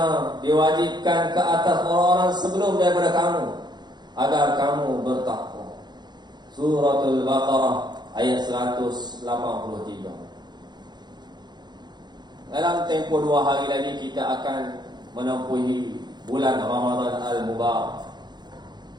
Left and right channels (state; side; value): late; left; 0.21 ms